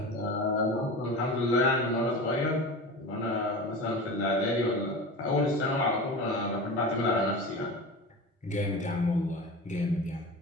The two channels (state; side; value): normal; both; correlation 0.31